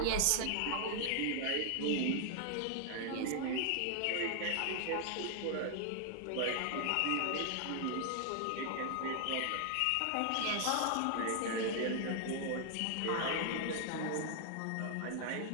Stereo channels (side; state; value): both; different; correlation 0.00